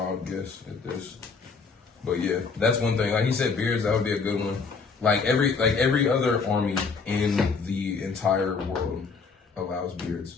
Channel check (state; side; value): quieter; right; 4.9 dB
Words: guess at this, but yeah, that's one thing. Like he said, beards. That would be a good one. Like every other army in the entire world allows beards,